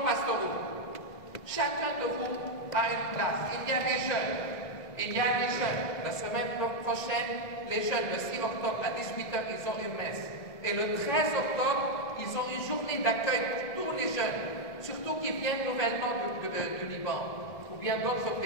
Chacun de vous a une place. Il y a des jeunes. Il y a des jeunes. La semaine prochaine, les jeunes, le 6 octobre à 18h, ils ont une messe. Et le 13 octobre, ils ont une journée d'accueil pour tous les jeunes, surtout qui viennent nouvellement du Liban, ou bien d'autres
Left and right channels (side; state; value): right; late; 1.7 ms